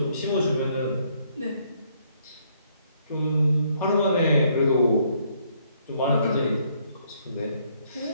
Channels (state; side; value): inverted; both; correlation -0.68